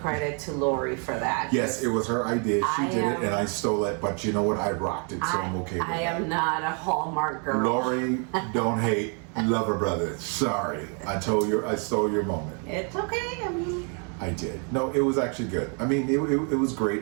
to Lori for that. Yes, it was her idea. She I did it am- and I stole it, but you know what? I rocked it, so I'm okay with I that. am not a Hallmark girl. Lori, don't hate. Love her brother. Sorry. I stole your moment. It's okay. I mean, I did. No, it was actually good. I mean, it was great.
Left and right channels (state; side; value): quieter; left; 39.3 dB